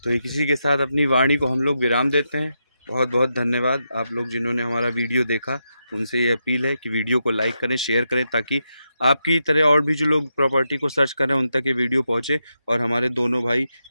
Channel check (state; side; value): inverted; both; correlation -0.85